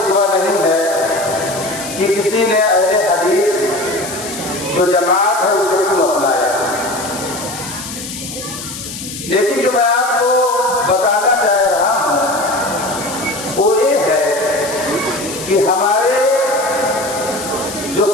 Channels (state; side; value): noise; left; hiss, 10 dB below the sound